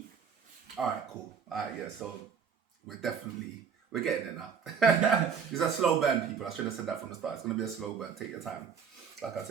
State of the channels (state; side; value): quieter; left; 6.7 dB